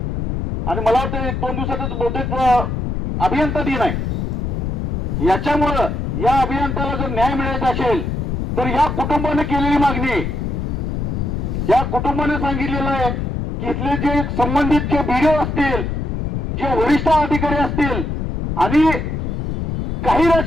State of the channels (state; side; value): noise; left; rumble, 2 dB below the sound